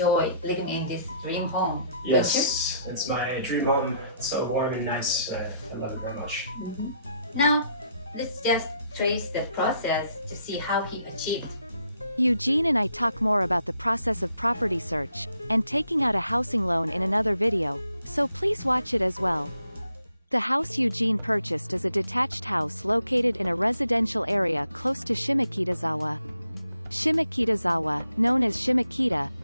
living in this dream home. Yes, it's my dream home. It's so warm and nice. I love it very much. Now, let's just trace the process to see how he achieved. Eugene and I talk more about the process of property search and taking out a housing loan in another video, so please watch it as well. The house Eugene purchased is a detached house located in a residential area close to Shimokitazawa. Shimokitazawa, known as Shimokita,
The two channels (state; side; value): inverted; both; correlation -0.73